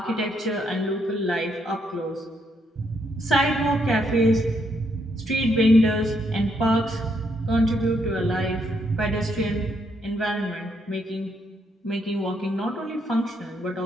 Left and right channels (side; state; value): both; normal; correlation 0.75